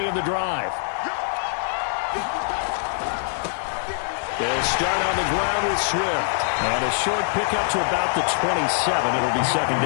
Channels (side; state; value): right; silent; digital silence